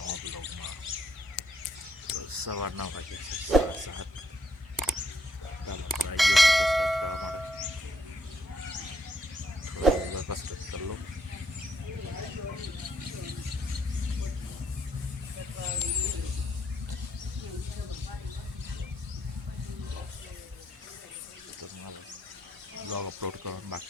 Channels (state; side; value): normal; both; correlation 0.74